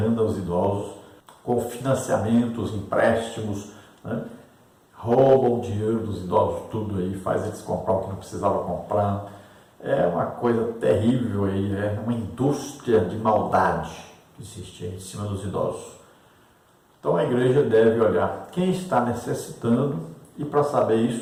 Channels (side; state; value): both; identical; correlation 1.00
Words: os idosos com financiamentos, empréstimos, né? Roubam o dinheiro dos idosos tudo aí, faz eles comprar o que não precisava comprar. É uma coisa terrível aí, é uma indústria de maldade que existe aí em cima dos idosos. Então a igreja deve olhar quem está necessitando e para saber